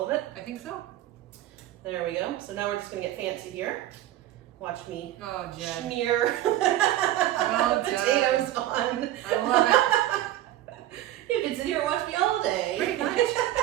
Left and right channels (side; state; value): left; quieter; 13.9 dB